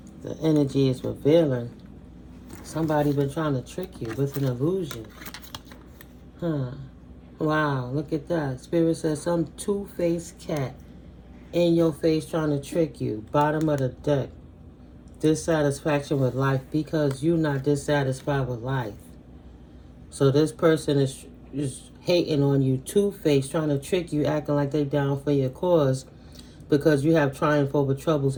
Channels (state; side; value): identical; both; correlation 1.00